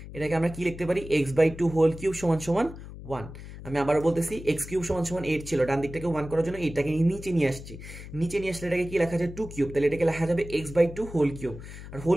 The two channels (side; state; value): left; noise; hum, 13 dB below the sound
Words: এটাকে আমরা কি লিখতে পারি? এক্স বাই 2 হোল কিউব সমান সমান 1। আমি আবারও বলতেছি, এক্স কিউব সমান সমান 8 ছিল, ডান দিকটাকে 1 করার জন্য এইটাকে নিচে নিয়ে আসছি। নিচে নিয়ে আসলে এটাকে কি লেখা যায়? 2 কিউব। তাহলে এটাকে লেখা যাবে এক্স বাই 2 হোল কিউব। আর